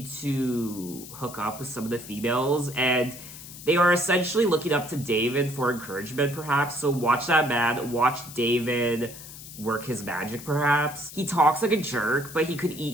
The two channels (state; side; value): noise; left; hiss, 14 dB below the sound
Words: to hook up with some of the females, and they are essentially looking up to David for encouragement, perhaps. So watch that man, watch David work his magic, perhaps. He talks like a jerk, but he could eat